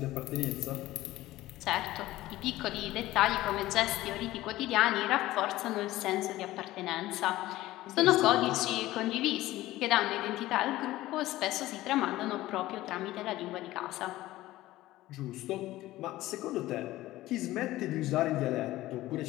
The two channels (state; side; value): quieter; right; 16.4 dB